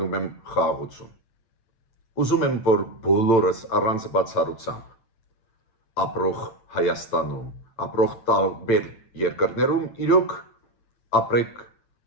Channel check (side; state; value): right; late; 8.8 ms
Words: եմ խաղաղություն։ Ուզում եմ, որ բոլորս առանց բացառությամբ ապրող Հայաստանում, ապրող տարբեր երկրներում իրոք ապրեք